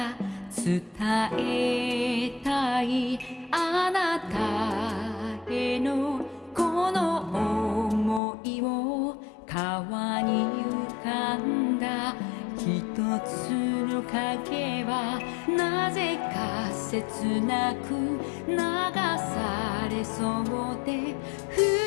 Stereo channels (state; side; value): drops out; right; at 8.2 s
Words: 伝えたいあなたへのこの想いを川に浮かんだ一つの影はなぜか切なく流されそうで二